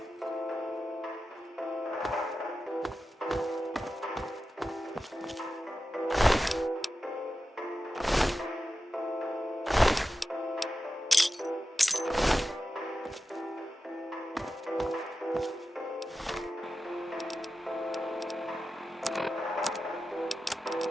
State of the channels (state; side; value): normal; both; correlation 0.92